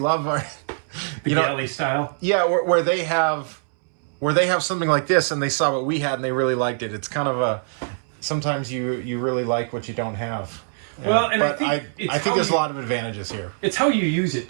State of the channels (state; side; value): silent; left; 63 dB below the other